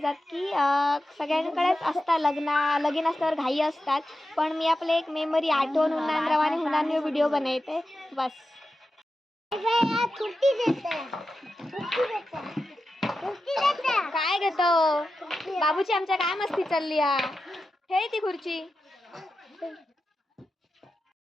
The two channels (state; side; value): normal; both; correlation 0.91